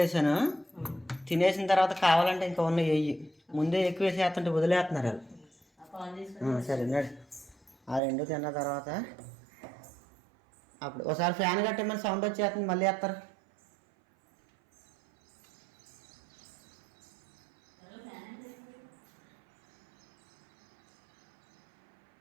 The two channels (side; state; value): left; drops out; at 8.0 s